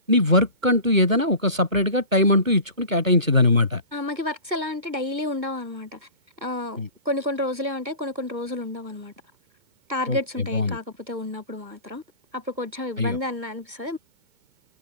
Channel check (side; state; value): left; late; 2.2 ms